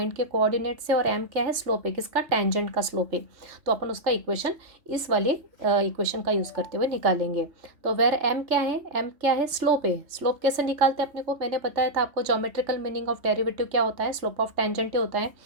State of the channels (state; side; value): late; left; 3.4 ms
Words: के कोऑर्डिनेट से, और m क्या है, स्लोप है किसका, टेंजेंट का स्लोप है। तो अपन उसका इक्वेशन इस वाले इक्वेशन का यूज़ करते हुए निकालेंगे। तो वेर m क्या है, m क्या है, स्लोप है। स्लोप कैसे निकालते हैं अपने को, मैंने बताया था आपको ज्योमेट्रिकल मीनिंग ऑफ डेरिवेटिव क्या होता है, स्लोप ऑफ टेंजेंट होता है।